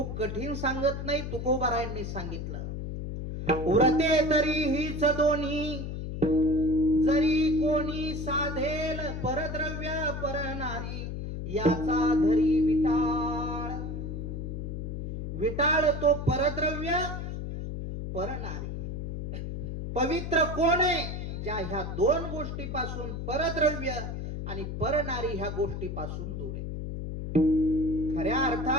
कठीण सांगत नाही, तुकोबारायांनी सांगितलं. व्रते तरी हीच दोन्ही, जरी कोणी साधेल परद्रव्य परनारी, याचा धरी विटाळ. विटाळ तो परद्रव्य परनारी. पवित्र कोण आहे? ज्या ह्या दोन गोष्टीपासून, परद्रव्य आणि परनारी ह्या गोष्टीपासून दूर आहे. खऱ्या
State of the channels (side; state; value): left; noise; hum, 5 dB below the sound